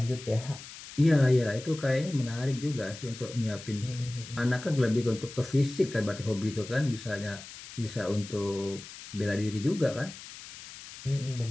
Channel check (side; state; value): left; noise; hiss, 14 dB below the sound